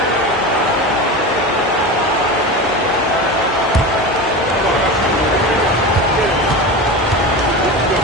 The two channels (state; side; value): normal; both; correlation 0.26